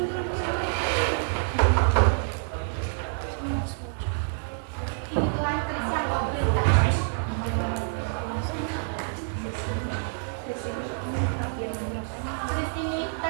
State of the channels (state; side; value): silent; left; digital silence